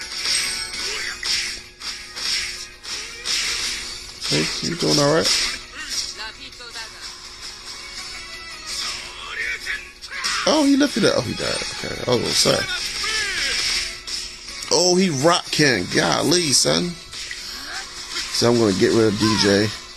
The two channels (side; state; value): both; identical; correlation 1.00